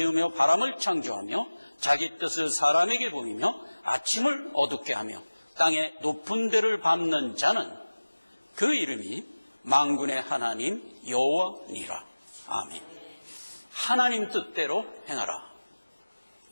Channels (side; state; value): both; inverted; correlation -1.00